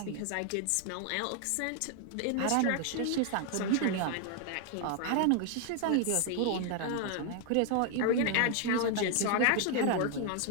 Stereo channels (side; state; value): both; different; correlation 0.00